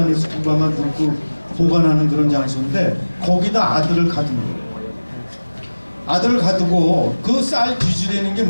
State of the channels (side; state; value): both; inverted; correlation -1.00